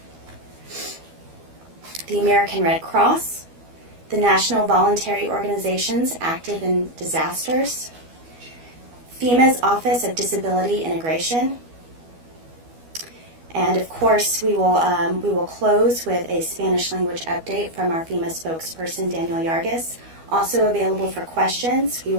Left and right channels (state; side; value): late; left; 12 ms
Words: the American Red Cross, the National Voluntary Organizations Active in Disasters, FEMA's Office of Disability Integration, and of course we will close with a Spanish language update from our FEMA spokesperson, Daniel Yargis. Also available for questions, we